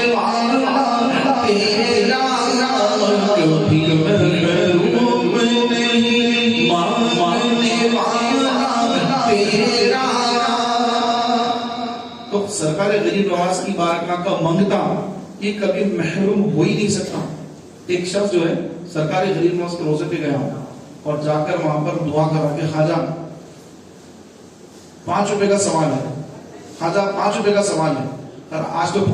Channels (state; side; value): identical; both; correlation 1.00